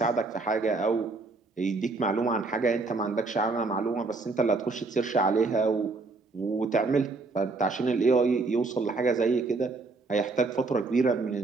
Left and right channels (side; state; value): left; quieter; 3.7 dB